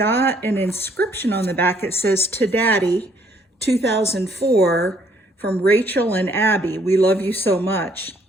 an inscription on the back. It says, "To Daddy, 2004, from Rachel and Abby. We love you so much."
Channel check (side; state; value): both; normal; correlation 0.65